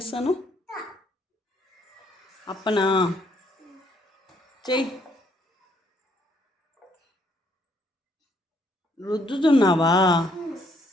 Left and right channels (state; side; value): normal; both; correlation 0.69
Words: అప్పనా చెయ్యి. రుద్దుతున్నావా?